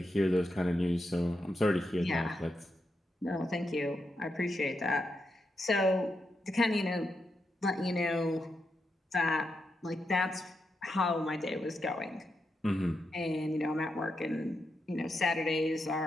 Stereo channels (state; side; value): normal; both; correlation 0.85